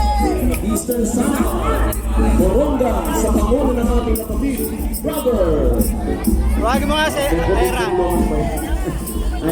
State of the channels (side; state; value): both; identical; correlation 1.00